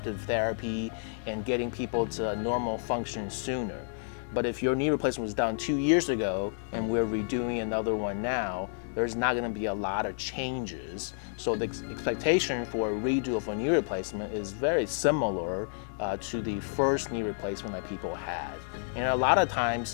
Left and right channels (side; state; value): right; silent; digital silence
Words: therapy, and getting people to normal function sooner. But if your knee replacement was done 2 years ago and we're redoing another one now, there's not going to be a lot of changes. So the expectation for a redo of a knee replacement is very similar to the first knee replacement that people had. And a lot of